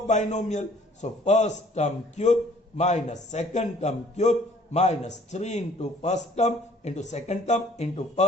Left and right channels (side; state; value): both; normal; correlation 0.57